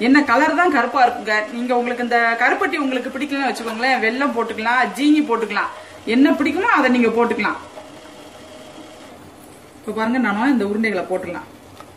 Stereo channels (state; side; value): identical; both; correlation 1.00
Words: என்ன கலர் தான் கருப்பா இருக்குங்க. நீங்க உங்களுக்கு இந்த கருப்பட்டி உங்களுக்கு பிடிக்கலன்னு வச்சுக்கோங்களேன், வெல்லம் போட்டுக்கலாம், ஜீனி போட்டுக்கலாம், என்ன பிடிக்குமோ அதை நீங்க போட்டுக்கலாம். இப்ப பாருங்க, நானும் இந்த உருண்டைகளை போட்டுக்கலாம்.